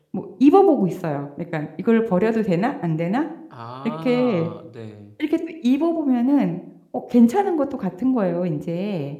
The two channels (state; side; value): identical; both; correlation 1.00